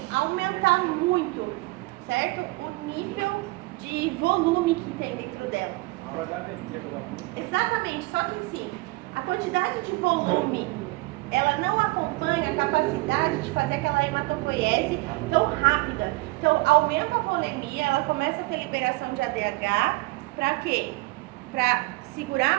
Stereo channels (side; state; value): left; quieter; 23.0 dB